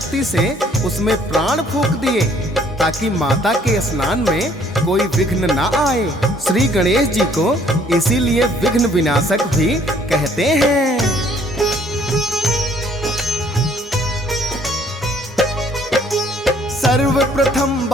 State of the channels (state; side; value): normal; both; correlation 0.61